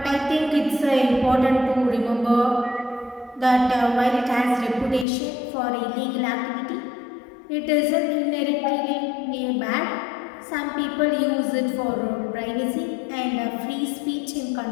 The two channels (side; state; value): right; drops out; at 5.1 s